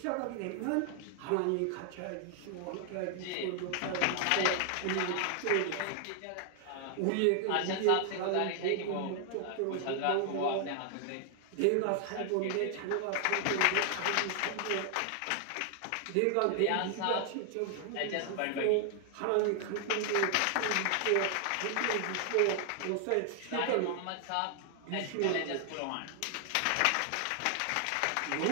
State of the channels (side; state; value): both; different; correlation 0.00